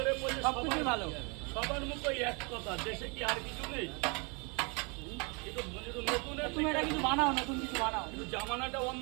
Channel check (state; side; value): quieter; left; 31.8 dB